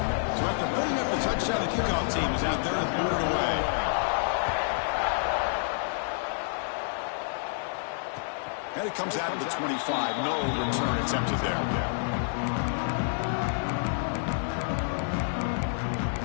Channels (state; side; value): silent; right; digital silence